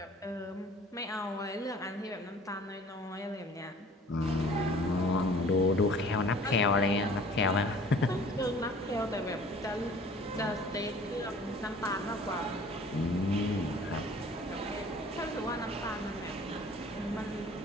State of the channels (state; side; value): normal; both; correlation 0.49